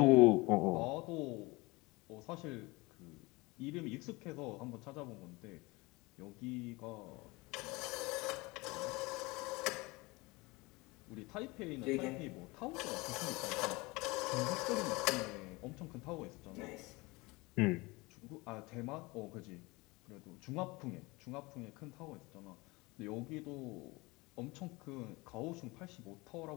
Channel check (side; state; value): right; quieter; 23.8 dB